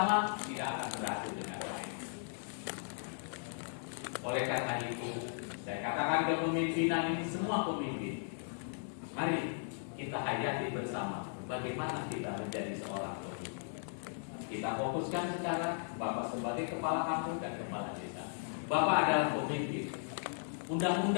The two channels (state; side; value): silent; right; digital silence